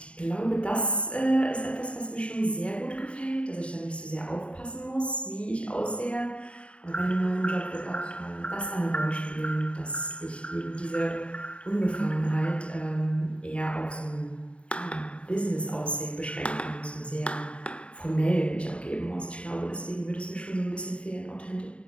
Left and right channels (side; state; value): right; late; 0.060 ms